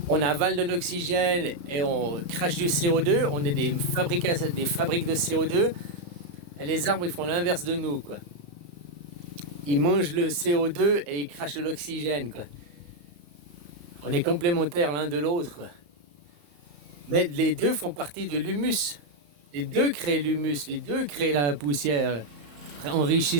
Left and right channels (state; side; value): late; left; 34 ms